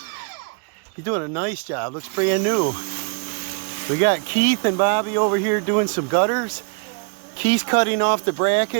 He's doing a nice job. Looks brand new. We got Keith and Bobby over here doing some gutters. Keith's cutting off the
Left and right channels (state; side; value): quieter; left; 37.8 dB